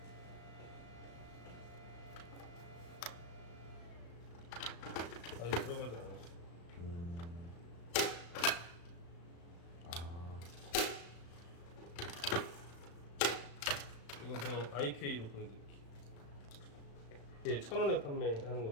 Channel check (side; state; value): right; late; 35 ms